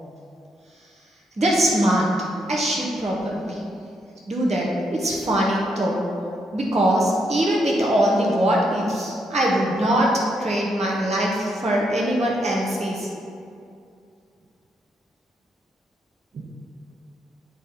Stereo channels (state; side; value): normal; both; correlation 0.77